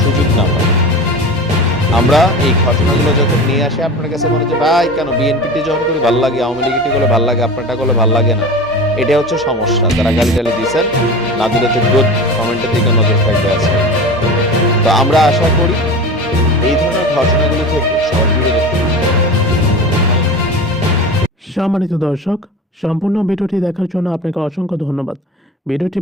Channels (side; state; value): both; normal; correlation 0.32